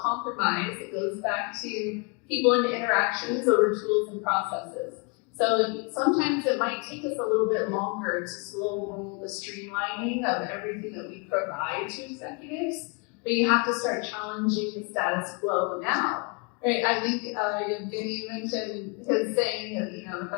It goes back to people and interactions over tools and processes. So sometimes it might take us a little bit longer to slow roll the streamlining of everything that we provide to executives, but you have to start challenging the status quo now. Right? I think Evgeny mentioned his saying that the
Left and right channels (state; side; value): quieter; right; 33.0 dB